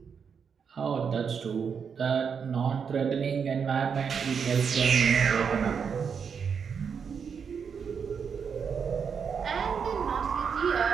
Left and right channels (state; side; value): quieter; left; 6.5 dB